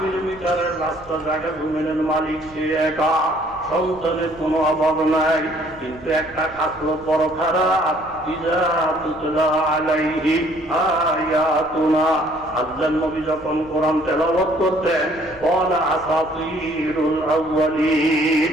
কিলোমিটারের রাস্তা জায়গা জমিনের মালিক সে একা, সন্তানের কোনো অভাব নাই। কিন্তু একটা খাসলো বড় খারাপ, ইযা তুতলা আলাইহি আয়াতুনা, আল্লাহর নবী যখন কোরআন তেলাওয়াত করতেন, ক্বালা আসাতিরুল আউয়ালিন,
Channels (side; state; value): right; noise; rumble, 23 dB below the sound